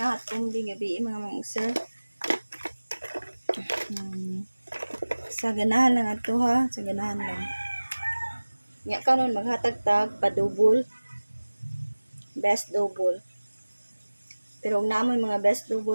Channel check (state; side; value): inverted; both; correlation -1.00